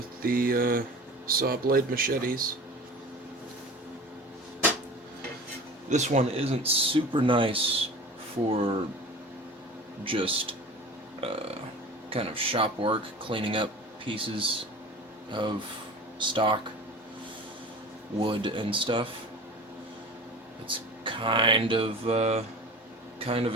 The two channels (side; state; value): both; normal; correlation 0.38